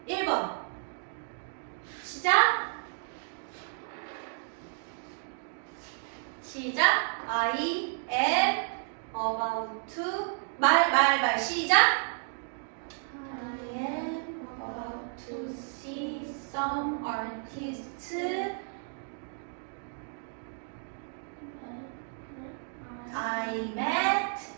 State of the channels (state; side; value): silent; left; 56 dB below the other